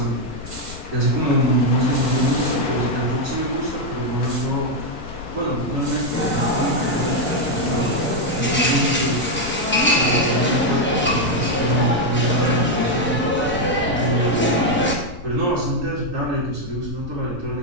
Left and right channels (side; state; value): left; noise; rumble, 14 dB below the sound